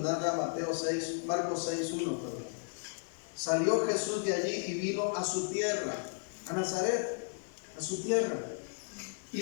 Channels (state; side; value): silent; right; digital silence